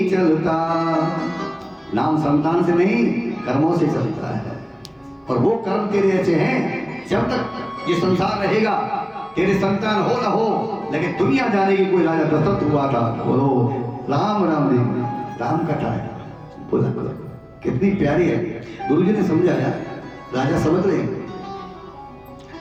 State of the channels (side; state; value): both; identical; correlation 1.00